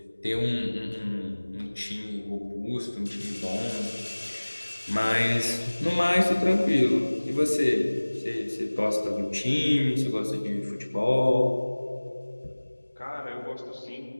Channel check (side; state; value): both; inverted; correlation -1.00